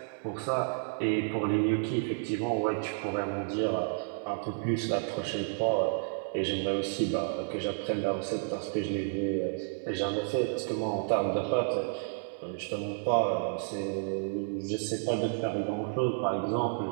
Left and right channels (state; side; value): silent; left; 57 dB below the other